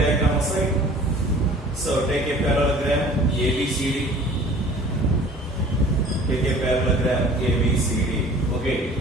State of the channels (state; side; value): normal; both; correlation 0.48